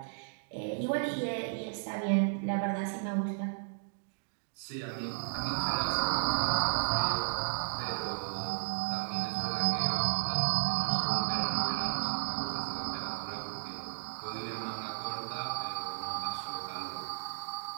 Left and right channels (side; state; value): left; silent; digital silence